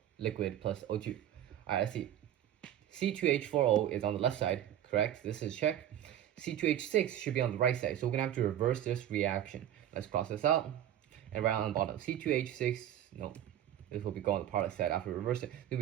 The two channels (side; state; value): left; quieter; 11.3 dB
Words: liquid plus O2. Alright, let's see. C2H4O is on the left side, correct? This is check. C2H6 should be on the right side, so we're going to have to reverse this reaction. Let's cross this out and write on the bottom. C2H6, no, this will be going on the product side after we reverse it. It